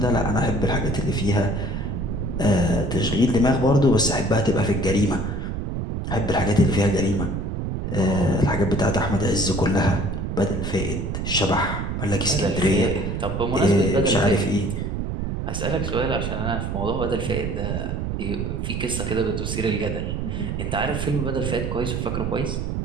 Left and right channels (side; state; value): right; noise; rumble, 2 dB below the sound